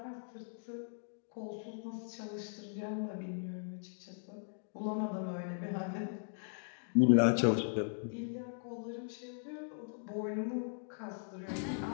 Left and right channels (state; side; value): silent; right; digital silence